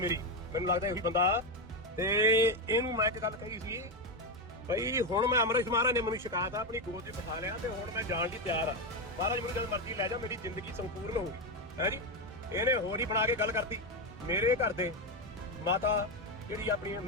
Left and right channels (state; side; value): normal; both; correlation 0.09